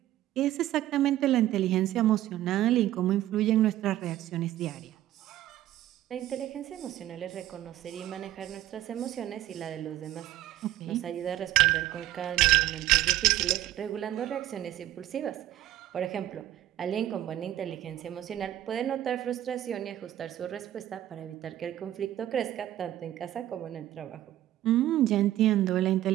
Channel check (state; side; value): quieter; left; 13.6 dB